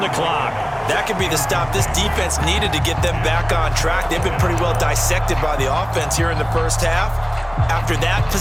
the clock. That could be the stop this defense needed to get them back on track. They've been pretty well dissected by the offense here in the first half. After that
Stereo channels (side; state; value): both; identical; correlation 1.00